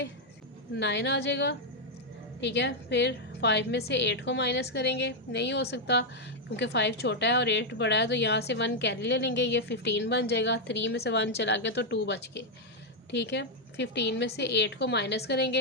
9 आ जाएगा। ठीक है, फिर 5 में से 8 को माइनस करेंगे, नहीं हो सकता क्योंकि 5 छोटा है और 8 बड़ा है, तो यहाँ से 1 कैरी ले लेंगे, ये 15 बन जाएगा। 3 में से 1 चला गया तो 2 बच गए। ठीक है, 15 में से 8 को माइनस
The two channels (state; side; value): normal; both; correlation 0.00